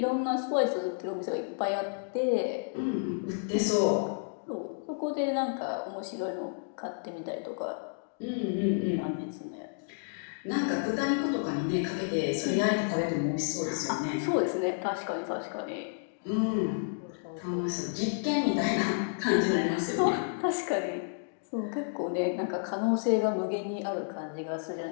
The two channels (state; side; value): silent; right; digital silence